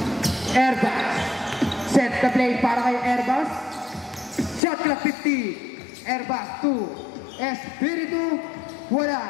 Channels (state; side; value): drops out; right; at 4.6 s